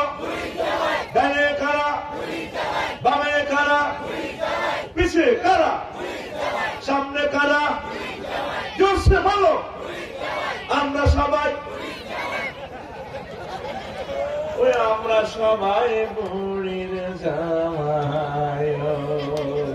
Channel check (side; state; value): both; identical; correlation 1.00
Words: ডানে কারা, বামে কারা, পিছে কারা, সামনে কারা? জোরসে বলো। আমরা সবাই, ওই আমরা সবাই বুড়ির জামাই।